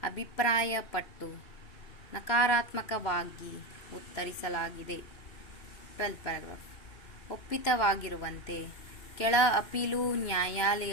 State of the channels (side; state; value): right; late; 3.0 ms